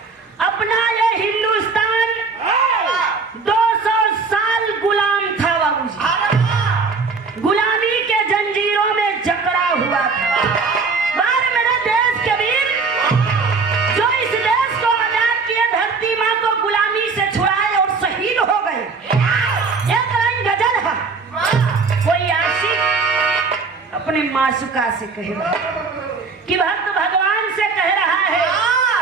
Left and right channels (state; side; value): quieter; left; 4.5 dB